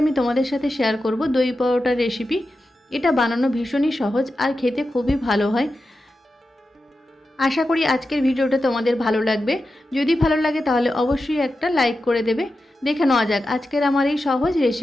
আমি তোমাদের সাথে শেয়ার করব দই পরোটার রেসিপি। এটা বানানো ভীষণই সহজ আর খেতে খুবই ভালো হয়। আশা করি আজকের ভিডিওটা তোমাদের ভালো লাগবে। যদি ভালো লাগে তাহলে অবশ্যই একটা লাইক করে দেবে। দেখে নেওয়া যাক আজকের আমার এই সহজ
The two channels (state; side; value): normal; both; correlation 0.91